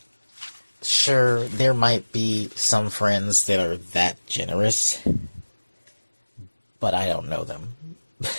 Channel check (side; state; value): both; inverted; correlation -1.00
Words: Sure, there might be some friends that are that generous, but I don't know them.